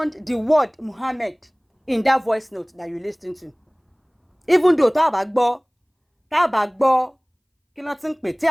the word Muhammad in that voice note that you listen to. Even though tá bá gbọ́ kí ló tin pè tí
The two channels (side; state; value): both; identical; correlation 1.00